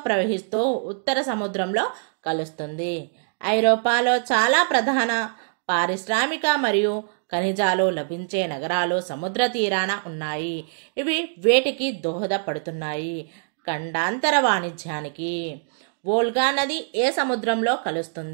ప్రవహిస్తూ ఉత్తర సముద్రంలో కలుస్తుంది. ఐరోపాలో చాలా ప్రధాన పారిశ్రామిక మరియు ఖనిజాలు లభించే నగరాలు సముద్ర తీరాన ఉన్నాయి. ఇవి వేటికి దోహదపడుతున్నాయి? ఖండాంతర వాణిజ్యానికి. వోల్గా నది ఏ సముద్రంలో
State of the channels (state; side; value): silent; left; digital silence